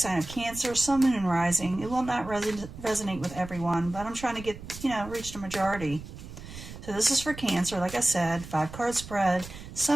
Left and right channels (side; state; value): right; noise; rumble, 13 dB below the sound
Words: of Cancer, Sun, Moon, and Rising. It will not resonate with everyone, but I'm trying to get, reach the majority. So this is for Cancer, like I said, 5-card spread,